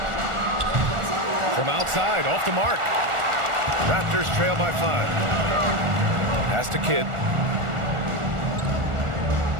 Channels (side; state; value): left; late; 1.4 ms